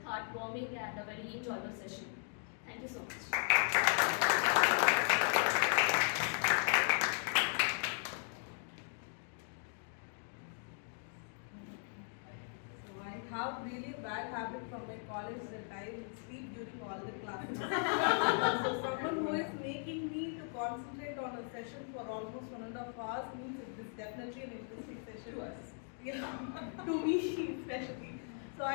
heartwarming and a very enjoyable session. Thank you so much. I have really bad habit from my college that I will sleep during all the classes. So someone who is making me to concentrate on a session for almost 1.5 hours means it is definitely an interesting session. To us. Yeah, to me especially. So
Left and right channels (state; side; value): silent; right; 53 dB below the other